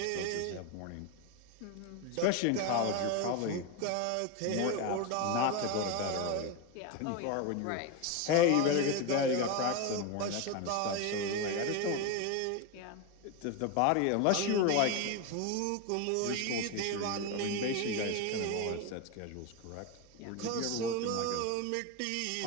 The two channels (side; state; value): both; different; correlation 0.03